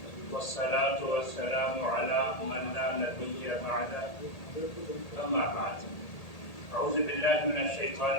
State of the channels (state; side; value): late; right; 1.8 ms